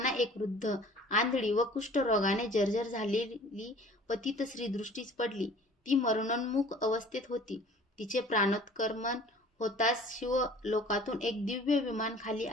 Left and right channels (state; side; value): normal; both; correlation 0.48